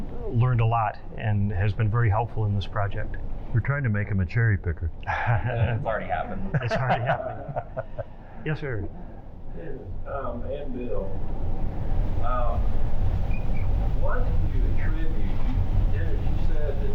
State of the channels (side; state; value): both; identical; correlation 1.00